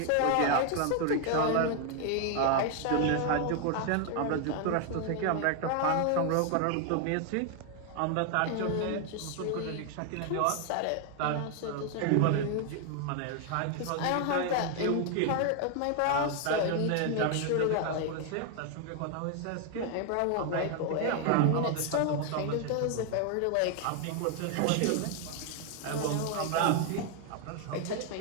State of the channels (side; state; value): both; different; correlation 0.01